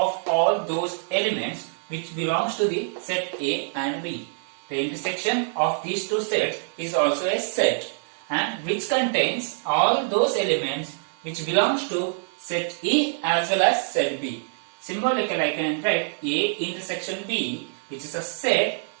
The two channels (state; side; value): silent; left; digital silence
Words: all those elements which belongs to the set A and B. The intersection of these two sets is also a set and which contains all those elements which belongs to set A as well as set B. Symbolically I can write A intersection B, which is a set